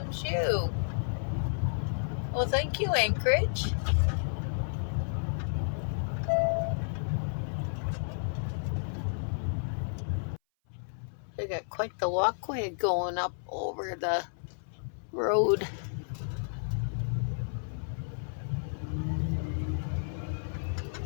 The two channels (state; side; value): silent; right; 57 dB below the other